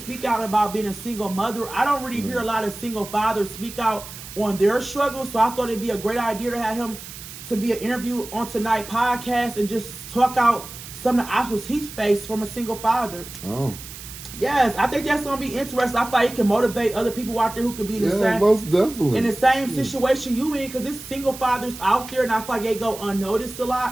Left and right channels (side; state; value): right; noise; hiss, 13 dB below the sound